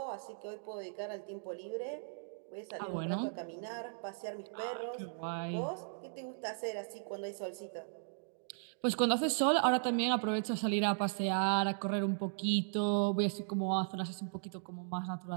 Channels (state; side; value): silent; left; digital silence